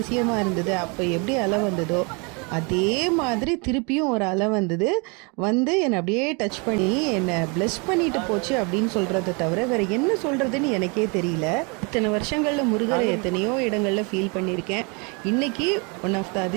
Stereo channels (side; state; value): left; quieter; 32.0 dB